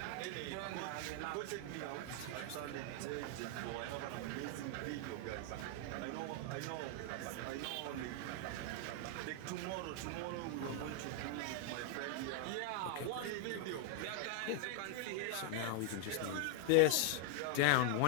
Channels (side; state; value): both; different; correlation 0.00